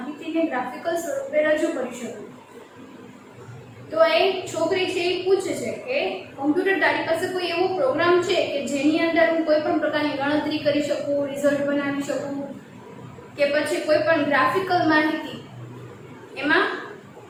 ગ્રાફિકલ સ્વરૂપે રજૂ કરી શકું. તો એક છોકરી છે એ પૂછે છે કે કમ્પ્યુટર તારી પાસે કોઈ એવો પ્રોગ્રામ છે કે જેની અંદર હું કોઈ પણ પ્રકારની ગણતરી કરી શકું, રિઝલ્ટ બનાવી શકું કે પછી કોઈ પણ ગ્રાફિકલ માહિતી એમાં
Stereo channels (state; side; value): identical; both; correlation 1.00